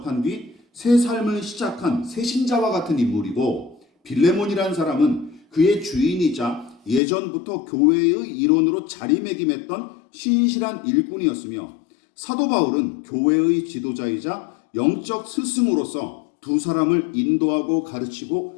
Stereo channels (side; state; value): right; drops out; at 7.0 s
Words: 뒤 새 삶을 시작한 새신자와 같은 인물이고, 빌레몬이라는 사람은 그의 주인이자 예전부터 교회의 일원으로 자리매김했던 신실한 일꾼이었으며, 사도 바울은 교회의 지도자이자 영적 스승으로서 두 사람을 인도하고